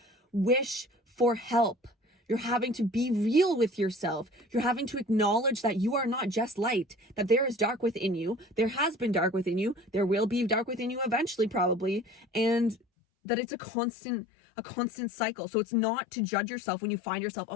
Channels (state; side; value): drops out; right; at 12.8 s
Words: wish for help. You're having to be real with yourself. You're having to acknowledge that you are not just light, that there is dark within you. There has been dark within you. There will be dark within you eventually, probably. And that it's a constant cycle. So it's not to judge yourself when you find yourself,